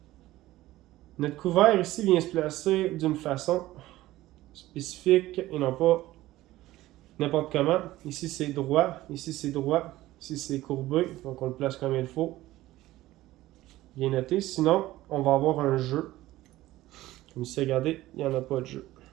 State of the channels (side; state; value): left; quieter; 16.3 dB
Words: couvert ici vient se placer d'une façon spécifique et non pas n'importe comment. Ici c'est droit, ici c'est droit, ici c'est courbé, donc on le place comme il faut. Bien noté, sinon on va avoir un jeu. Comme ici, regardez, il n'y en a pas de jeu.